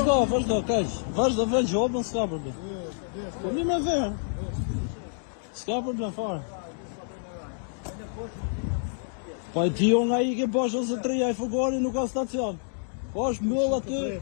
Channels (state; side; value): silent; right; digital silence